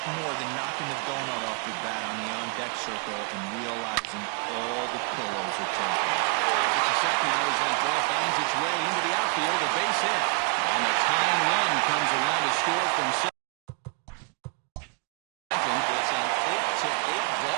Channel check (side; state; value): left; quieter; 32.8 dB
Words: more than knocking the donut off your bat on the on-deck circle and realizing all the pillows are taken. It's a set now as that ball finds its way into the outfield, a base hit. And the tying run comes around to score from second. It's an 8-8